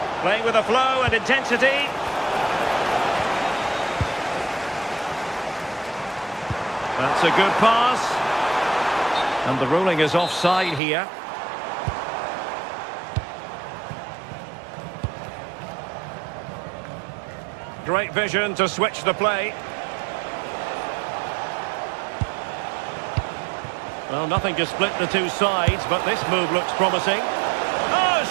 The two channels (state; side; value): drops out; left; at 10.8 s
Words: Playing with a flow and intensity. That's a good pass. And the ruling is offside here. Great vision to switch the play. Well, nothing to split the two sides, but this move looks promising. Oh,